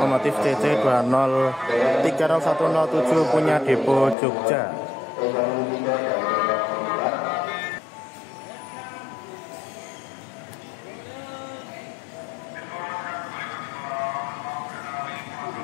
CC 2030107 punya depo Jogja.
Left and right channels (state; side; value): drops out; right; at 4.2 s